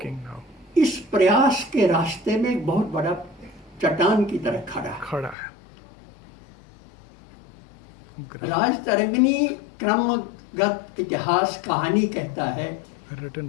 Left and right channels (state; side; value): drops out; right; at 5.4 s